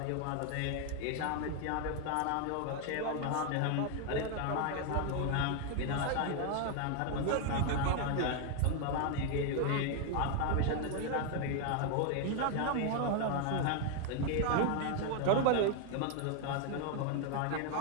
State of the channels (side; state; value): both; different; correlation 0.01